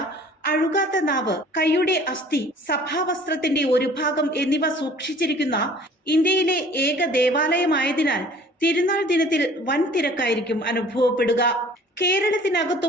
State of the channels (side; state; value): both; normal; correlation 0.50